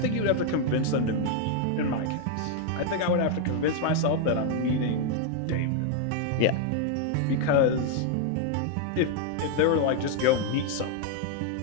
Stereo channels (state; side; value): different; both; correlation 0.00